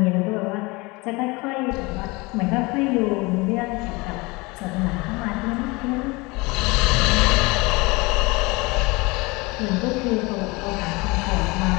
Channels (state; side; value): quieter; right; 24.8 dB